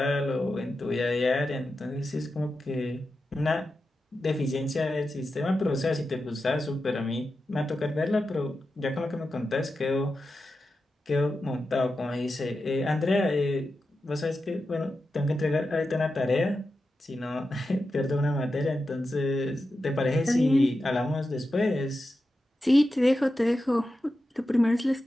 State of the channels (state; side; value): normal; both; correlation 0.90